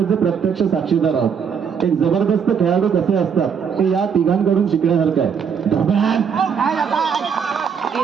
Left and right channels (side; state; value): left; quieter; 6.9 dB